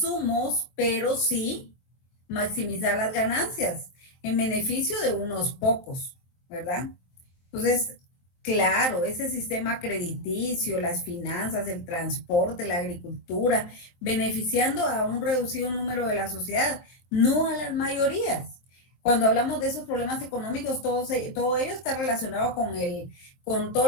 pero sí maximizar las ganancias en beneficio de unos pocos, ¿verdad? Entonces, claro, ese sistema crediticio, las finanzas, el transporte, la agricultura, beneficiando a un reducido número de la sociedad, no a las mayorías. Cuando hablamos de esos problemas económicos, todo ello está relacionado con todo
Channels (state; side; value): late; right; 23 ms